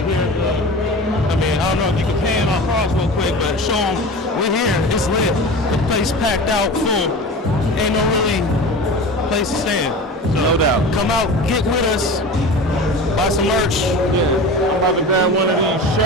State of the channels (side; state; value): both; normal; correlation 0.33